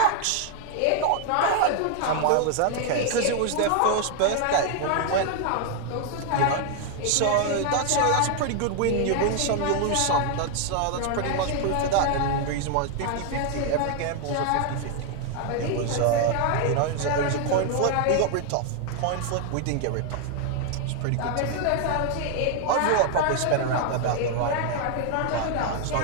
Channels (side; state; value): both; different; correlation 0.00